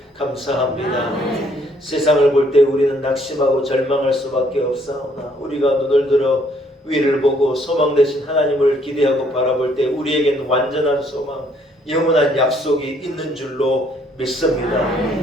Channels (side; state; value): both; normal; correlation 0.66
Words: 감사합니다. 세상을 볼 때 우리는 낙심하고 절망할 수밖에 없사오나 우리가 눈을 들어 위를 보고 소망 되신 하나님을 기대하고 바라볼 때 우리에겐 완전한 소망, 영원한 약속이 있는 줄로 믿습니다.